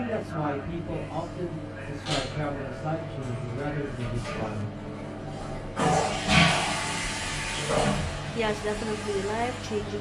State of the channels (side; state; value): both; identical; correlation 1.00